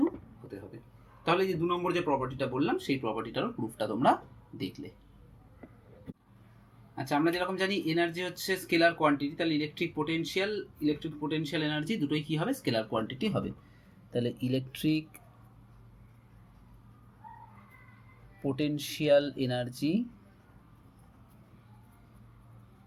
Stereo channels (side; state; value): both; identical; correlation 1.00